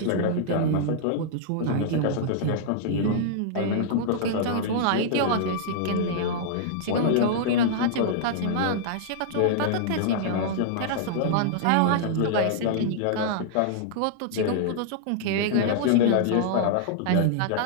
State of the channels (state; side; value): different; both; correlation -0.01